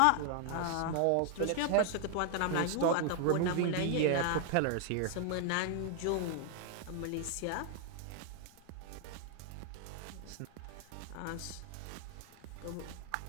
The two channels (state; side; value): different; both; correlation 0.00